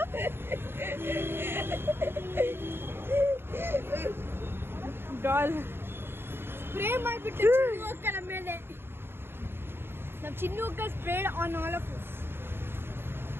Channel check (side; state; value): left; late; 0.11 ms